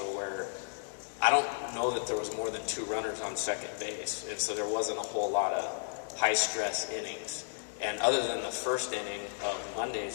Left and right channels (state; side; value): silent; right; digital silence